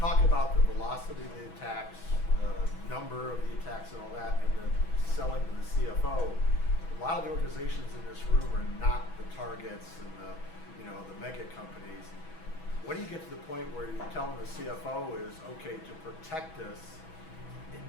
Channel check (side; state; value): right; late; 6.1 ms